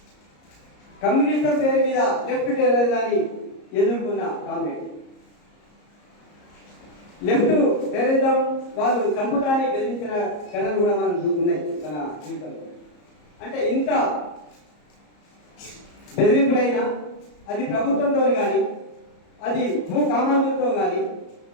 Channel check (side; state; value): right; late; 34 ms